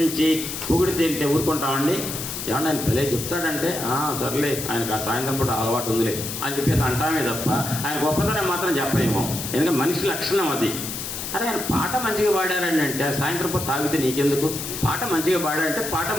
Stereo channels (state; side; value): noise; left; hiss, 6 dB below the sound